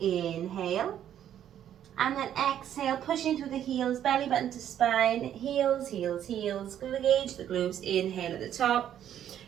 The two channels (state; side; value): quieter; left; 10.4 dB